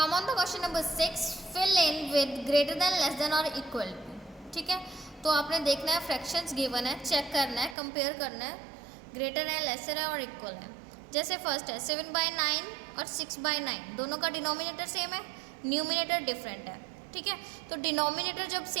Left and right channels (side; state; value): left; drops out; at 7.8 s